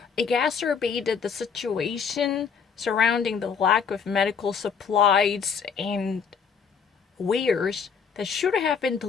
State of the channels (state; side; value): quieter; right; 6.4 dB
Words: exacerbated the situation surrounding the lack of medical supplies and wares that should have been